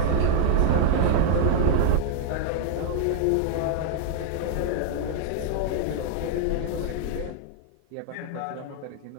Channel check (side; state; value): both; different; correlation -0.01